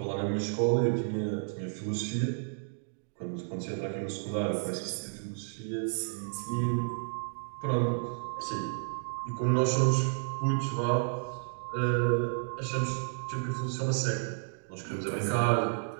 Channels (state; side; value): silent; left; digital silence